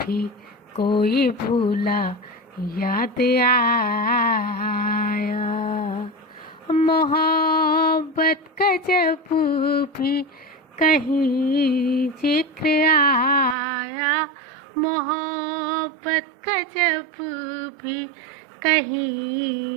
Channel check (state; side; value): drops out; left; at 13.6 s